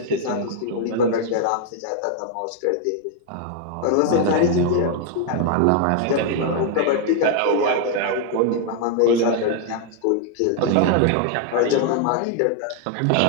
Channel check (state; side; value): different; both; correlation 0.00